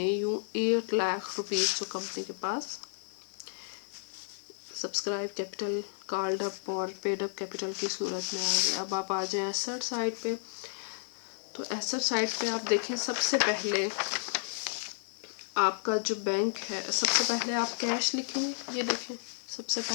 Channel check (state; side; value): silent; right; digital silence